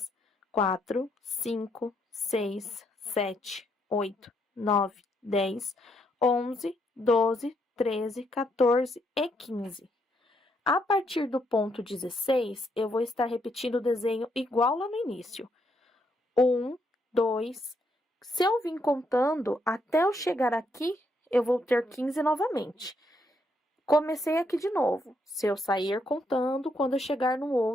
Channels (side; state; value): both; normal; correlation 0.75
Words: 4, 5, 6, 7, 8, 9, 10, 11, 12, 13, 14 e 15. A partir do ponto 16, eu vou estar repetindo o desenho igual lá no início. 1, 2, Se eu vim contando, até eu chegar aqui, eu vou ter 15 novamente. Comecei aqui de novo. Se eu sair contando, quando eu chegar no